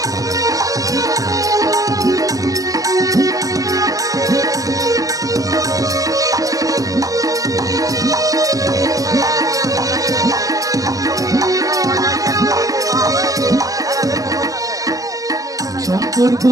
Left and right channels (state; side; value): late; left; 0.17 ms